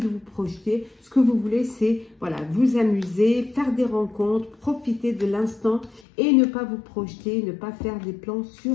vous projeter, ce que vous voulez, c'est voilà, vous amuser, faire des rencontres, profiter de l'instant et ne pas vous projeter, ne pas faire des plans sur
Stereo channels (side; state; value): right; drops out; at 6.0 s